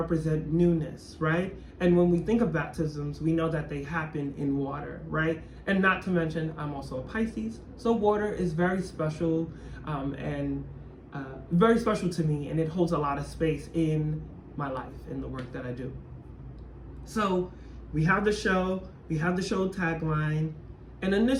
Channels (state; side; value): identical; both; correlation 1.00